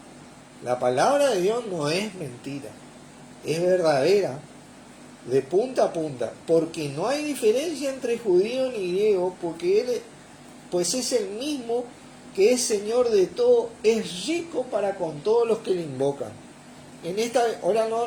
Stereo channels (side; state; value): both; identical; correlation 1.00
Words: La palabra de Dios no es mentira. Es verdadera, de punta a punta. Porque no hay diferencia entre judío ni griego, porque Él pues es el mismo que es Señor de todo, es rico para con todos los que le invocan. En esta, hola